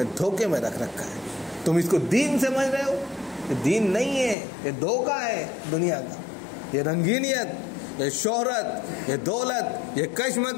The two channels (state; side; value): drops out; right; at 4.4 s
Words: دھوکے میں رکھ رکھا ہے، تم اس کو دین سمجھ رہے ہو، یہ دین نہیں ہے، یہ دھوکہ ہے دنیا کا، یہ رنگینیت، یہ شہرت، یہ دولت، یہ